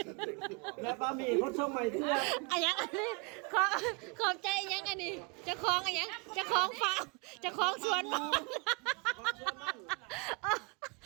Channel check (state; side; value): quieter; left; 30.5 dB